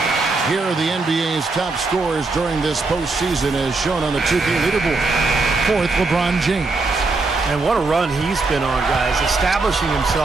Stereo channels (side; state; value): left; quieter; 3.7 dB